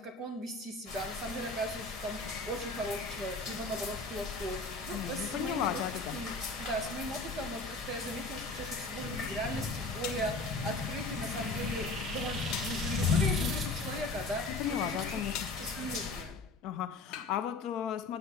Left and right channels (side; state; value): right; quieter; 3.2 dB